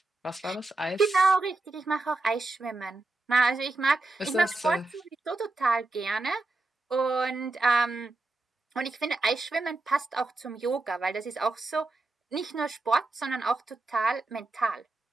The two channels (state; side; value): quieter; left; 3.1 dB